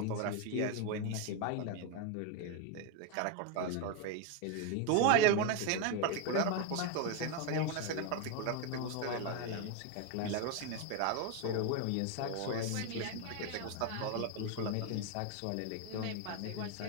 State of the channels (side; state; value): both; different; correlation 0.02